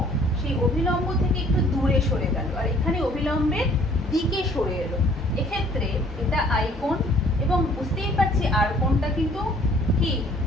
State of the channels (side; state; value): both; normal; correlation 0.57